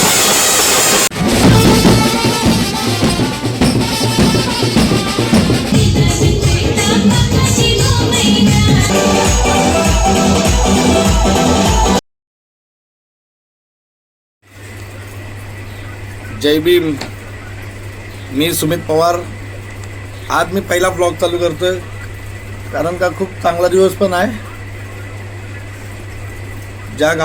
जय भीम. मी सुमित पवार. आज मी पहिला ब्लॉग चालू करतोय कारण का खूप चांगला दिवस पण आहे. ज्या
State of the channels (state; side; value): identical; both; correlation 1.00